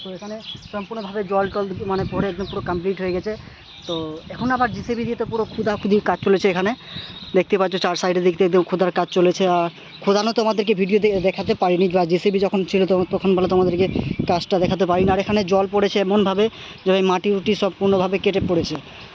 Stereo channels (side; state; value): both; identical; correlation 1.00